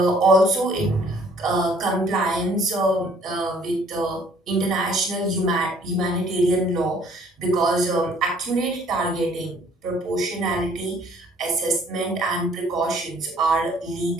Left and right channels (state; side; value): normal; both; correlation 0.58